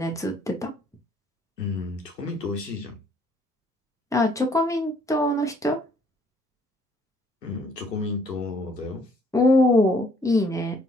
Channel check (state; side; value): normal; both; correlation 0.63